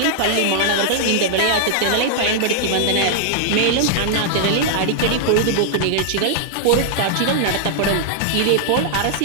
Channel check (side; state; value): both; different; correlation -0.01